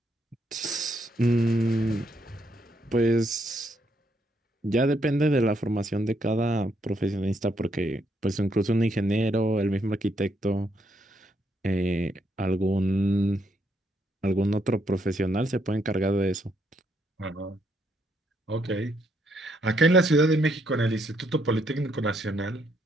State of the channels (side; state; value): both; normal; correlation 0.75